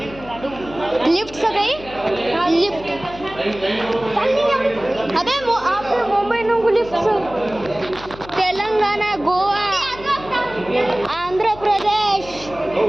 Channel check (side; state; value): left; noise; hum, 17 dB below the sound